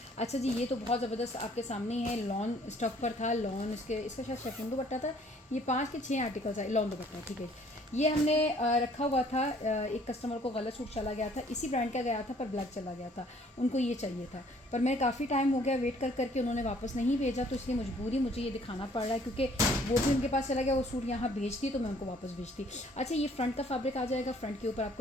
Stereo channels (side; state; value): both; normal; correlation 0.59